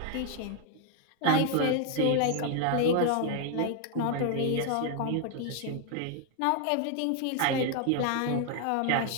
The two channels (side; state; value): both; different; correlation 0.00